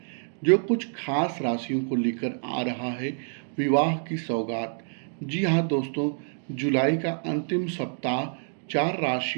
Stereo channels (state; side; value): silent; left; digital silence